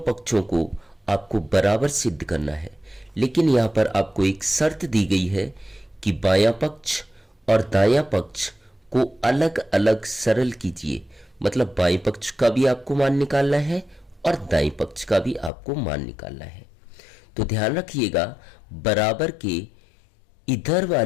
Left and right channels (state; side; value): drops out; right; at 15.5 s